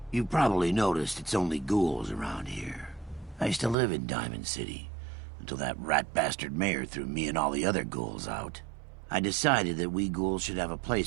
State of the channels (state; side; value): drops out; left; at 3.8 s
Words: You've probably noticed it's only ghouls around here. I used to live in Diamond City, until that rat bastard mayor threw me and all the other ghouls out. I decided that we ghouls should have a